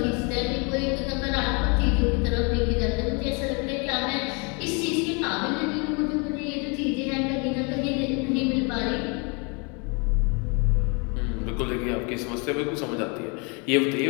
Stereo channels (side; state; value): right; quieter; 32.8 dB